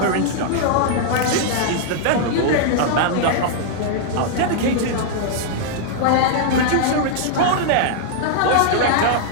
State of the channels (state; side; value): different; both; correlation -0.01